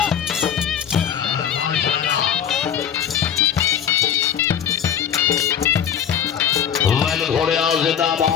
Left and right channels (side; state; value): right; quieter; 8.8 dB